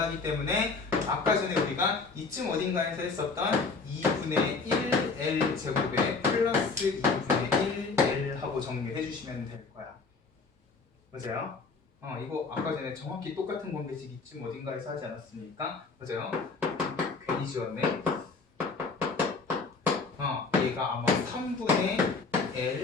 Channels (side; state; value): right; quieter; 4.3 dB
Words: 때문에 아까 전에 우리가 이쯤 어딘가에서 했었던 2분의 1 L 제곱에 플러스 2분의 1 L 하고 정리해 주시면 될 거야. 맞아요? 이거 아까 전에 정확히 똑같은 관계식 이쯤 어딘가에서 하지 않았습니까? 맞아요? 괜히 지웠네. 얘가 아마 3분의